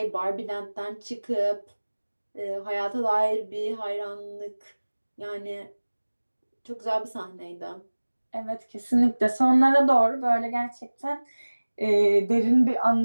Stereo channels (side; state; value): both; inverted; correlation -1.00